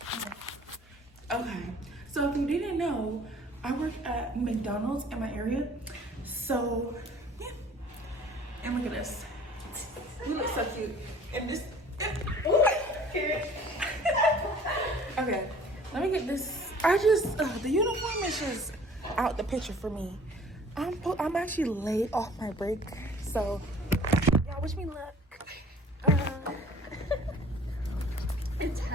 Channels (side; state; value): both; normal; correlation 0.51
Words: Okay, so if you didn't know, I work at McDonald's in my area. So yeah, and look at this. You look so cute. And this. Okay, let me get this. The uniform is just out the picture for me. I'm actually late off my break, so y'all wish me luck. It's